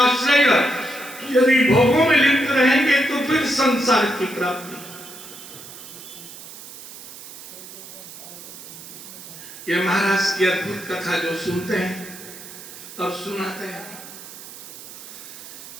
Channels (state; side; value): noise; right; hiss, 14 dB below the sound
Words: आश्रय। यदि भोगों में लिप्त रहेंगे तो फिर संसार की प्राप्ति। यह महाराज की अद्भुत कथा जो सुनते हैं और सुनाते हैं।